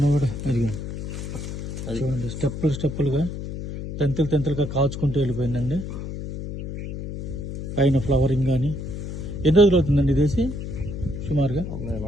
కూడా అది చూడండి, స్టెప్పులుగా తెంతులుగా కాచుకుంటూ వెళ్ళిపోయిందండి. పైన ఫ్లవరింగ్ కానీ. ఎన్ని రోజులు అవుతుందండి ఇదేసి? సుమారుగా నేను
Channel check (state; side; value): noise; left; hum, 7 dB below the sound